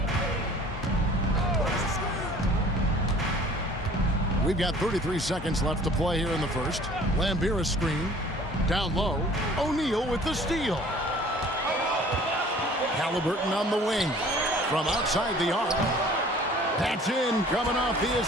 We've got 33 seconds left to play here in the first. Lambier a screen. Down low. O'Neal with the steal. Halliburton on the wing. From outside the arc. That's in, coming off the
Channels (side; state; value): both; normal; correlation 0.50